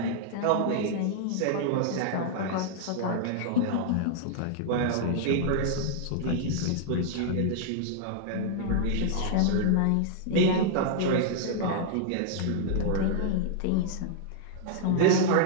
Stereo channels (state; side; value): different; both; correlation -0.01